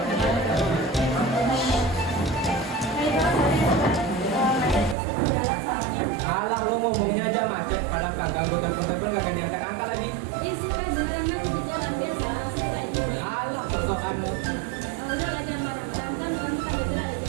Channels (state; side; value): drops out; left; at 5.0 s